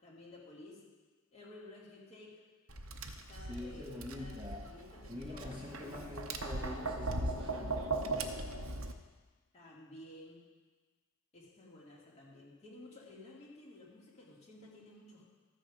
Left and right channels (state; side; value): normal; both; correlation 0.26